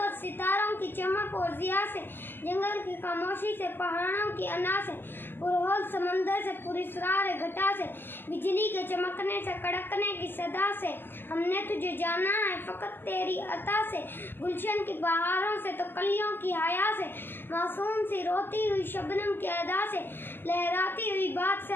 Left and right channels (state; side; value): late; right; 0.098 ms